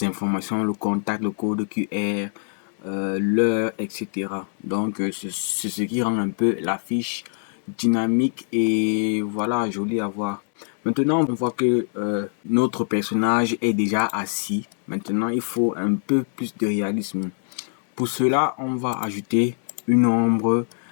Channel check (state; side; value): silent; right; digital silence